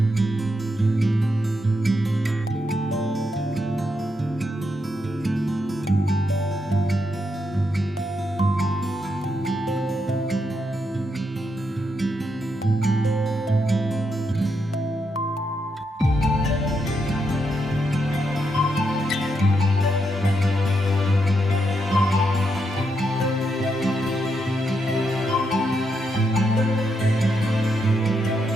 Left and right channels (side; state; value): both; normal; correlation 0.81